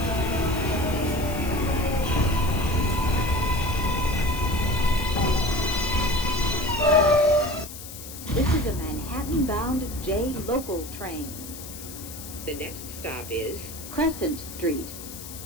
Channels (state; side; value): noise; left; hiss, 12 dB below the sound